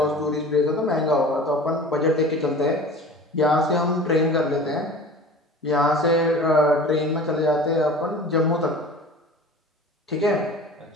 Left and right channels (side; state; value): both; normal; correlation 0.39